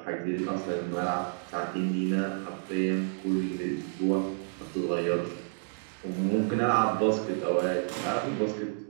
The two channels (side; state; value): left; silent; digital silence